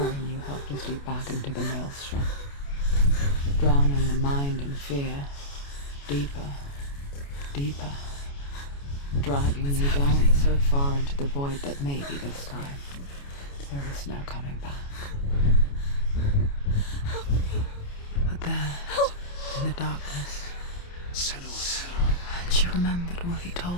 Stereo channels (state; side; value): late; right; 28 ms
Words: you helplessly back into the maelstrom, drowning the mind in fear, deeper, deeper, dragging you down so far into the void that maybe this time there is no coming back. But there, in the darkness, Sanua, she remembered what he